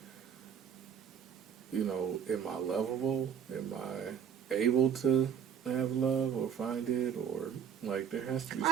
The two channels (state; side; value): quieter; left; 8.2 dB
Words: you know, am I lovable? Am I able to have love or find it? Or Like, there has to be Are